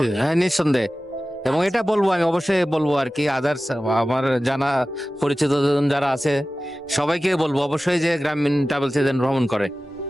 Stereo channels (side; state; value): both; normal; correlation 0.96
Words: হ্যাঁ, নিঃসন্দেহে। এবং এটা বলবো, আমি অবশ্যই বলবো আর কি, আদার্স আমার জানা পরিচিত জন যারা আছে সবাইকে বলবো অবশ্যই যে গ্রামীণ ট্রাভেলসে যেন ভ্রমণ করে।